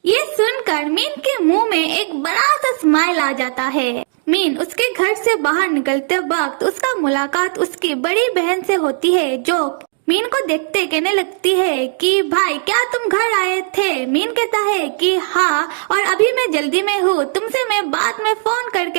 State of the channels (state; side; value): silent; left; 68 dB below the other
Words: ये सुनकर मीन के मुंह में एक बड़ा सा स्माइल आ जाता है। मीन उसके घर से बाहर निकलते वक्त उसका मुलाकात उसकी बड़ी बहन से होती है, जो मीन को देखते कहने लगती है कि भाई क्या तुम घर आए थे? मीन कहता है कि हाँ, और अभी मैं जल्दी में हूँ, तुमसे मैं बाद में फोन